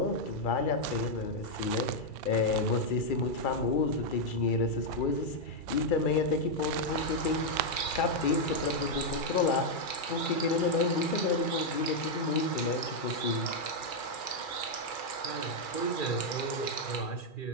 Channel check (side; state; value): right; late; 2.4 ms